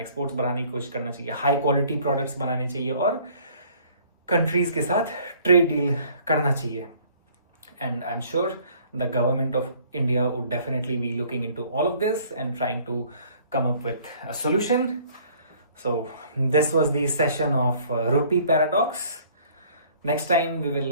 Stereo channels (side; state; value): both; inverted; correlation -0.56